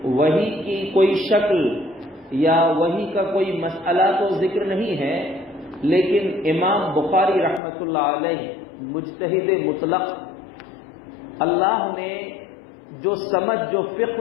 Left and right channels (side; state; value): right; drops out; at 7.6 s